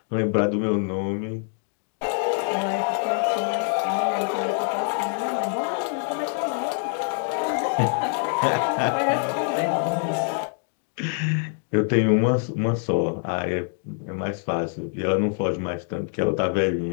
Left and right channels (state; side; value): silent; right; 55 dB below the other